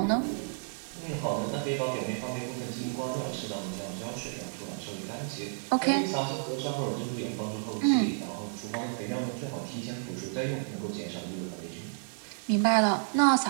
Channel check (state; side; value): silent; left; digital silence